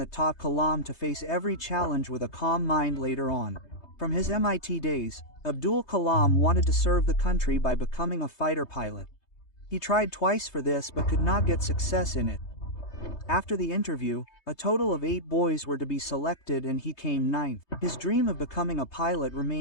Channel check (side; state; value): right; late; 3.2 ms